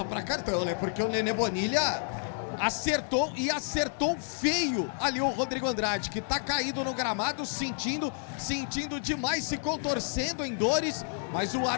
pra cartão, né? Porque o Nenê Bonilha acertou feio ali o Rodrigo Andrade, que tá caído no gramado, sentindo demais, se contorcendo em dores, mas o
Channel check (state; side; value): silent; right; digital silence